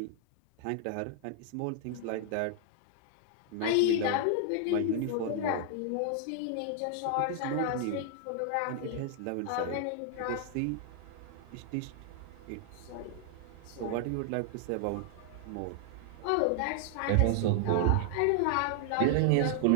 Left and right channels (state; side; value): different; both; correlation 0.00